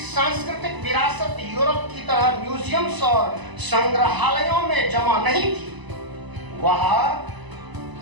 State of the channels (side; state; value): left; late; 1.0 ms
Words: विरासत यूरोप की तरह म्यूजियम्स और संग्रहालयों में जमा नहीं थी। वह